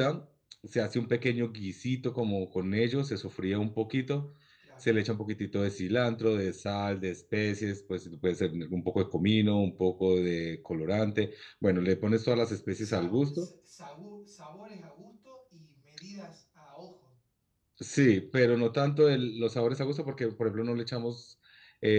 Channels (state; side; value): identical; both; correlation 1.00